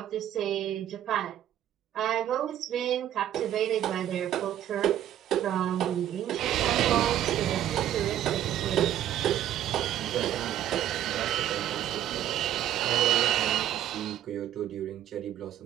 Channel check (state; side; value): quieter; left; 11.6 dB